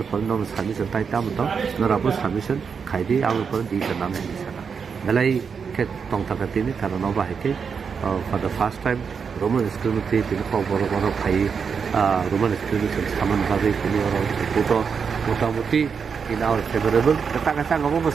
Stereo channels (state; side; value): quieter; left; 6.1 dB